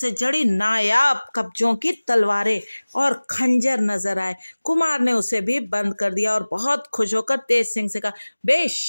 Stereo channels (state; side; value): inverted; both; correlation -1.00